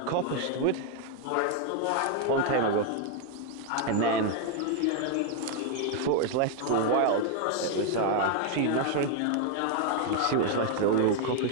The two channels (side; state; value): both; different; correlation 0.00